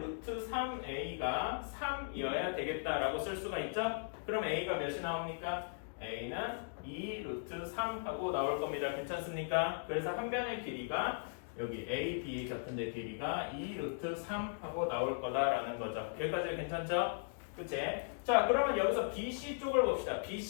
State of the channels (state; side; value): silent; right; digital silence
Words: 3a가 3이어야 되겠다라고 쓸 수가 있죠? 그럼 a가 몇이 나옵니까? a는 2 루트 3 하고 나올 겁니다. 괜찮습니까? 그래서 한 변의 길이가 여기 A, B 같은 데 길이가 2 루트 3 하고 나올 거다라는 거죠. 여기까지 괜찮죠? 그치? 자, 그러면 여기서 BC 쪽을 봅시다.